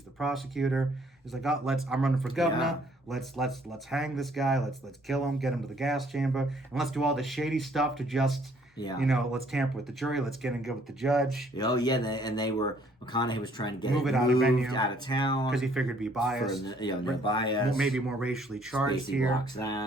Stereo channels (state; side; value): normal; both; correlation 0.62